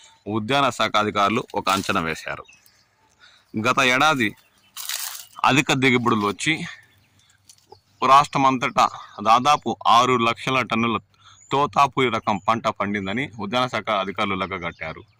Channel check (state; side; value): identical; both; correlation 1.00